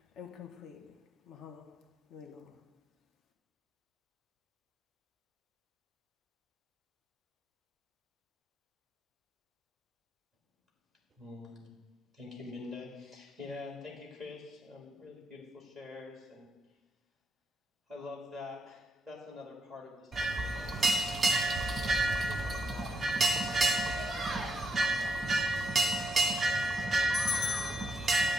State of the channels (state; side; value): normal; both; correlation 0.78